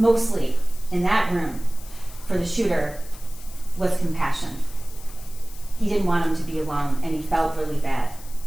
in that room for the shooter was compassion. He didn't want him to be alone, and he felt really bad.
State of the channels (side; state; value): left; noise; hiss, 18 dB below the sound